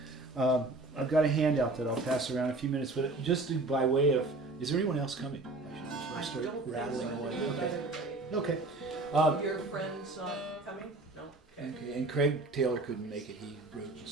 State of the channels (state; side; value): quieter; left; 3.0 dB